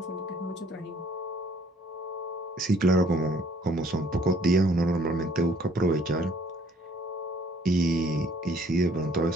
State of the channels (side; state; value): both; normal; correlation 0.60